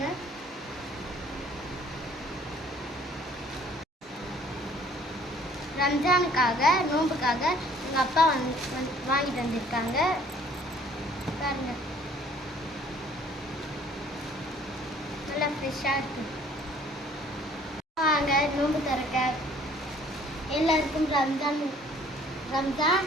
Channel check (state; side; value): normal; both; correlation 0.57